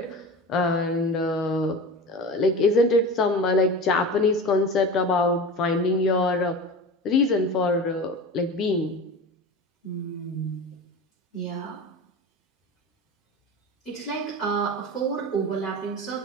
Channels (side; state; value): both; normal; correlation 0.31